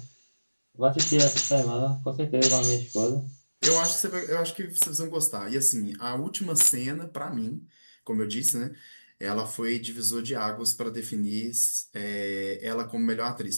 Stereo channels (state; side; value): inverted; both; correlation -1.00